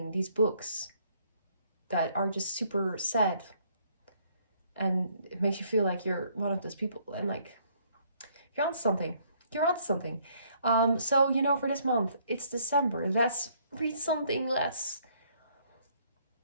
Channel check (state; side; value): inverted; both; correlation -0.66